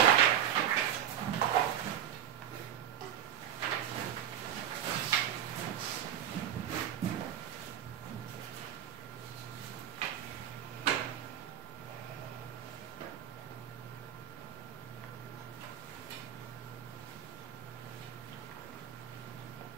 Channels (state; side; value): quieter; left; 10.4 dB